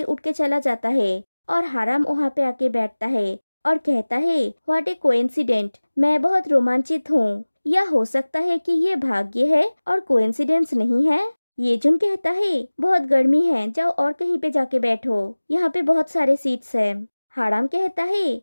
उठ के चला जाता है और हाराम वहाँ पे आके बैठता है और कहता है व्हाट ए कोइंसिडेंट, मैं बहुत रोमांचित हूँ। या हो सकता है कि ये भाग्य है और कोइंसिडेंस नहीं है। ये जुन कहता है बहुत गर्मी है, जाओ और कहीं पे जाके बैठो, यहाँ पे बहुत सारे सीट्स हैं। हाराम कहता है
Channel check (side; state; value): both; inverted; correlation -1.00